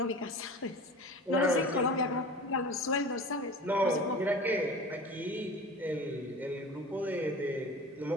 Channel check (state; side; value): normal; both; correlation 0.36